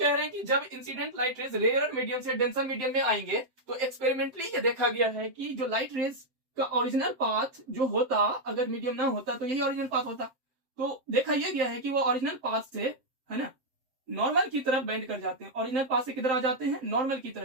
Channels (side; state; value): left; late; 7.7 ms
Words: रहे हैं कि जब incident light rays rare medium से डेंसर मीडियम में आएंगे तो एक्सपेरिमेंटली ये देखा गया है कि जो लाइट रेज का ओरिजिनल पाथ जो होता, अगर मीडियम ना होता तो यही ओरिजिनल पाथ होता। तो देखा यह गया है कि वो ओरिजिनल पाथ से, है ना, नॉर्मल की तरफ बेंड कर जाते हैं। ओरिजिनल पाथ से किधर आ जाते हैं, नॉर्मल की